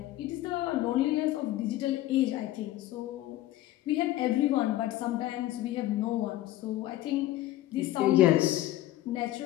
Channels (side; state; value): right; quieter; 15.0 dB